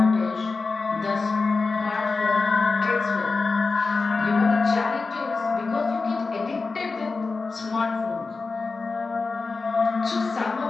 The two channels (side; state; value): right; quieter; 4.1 dB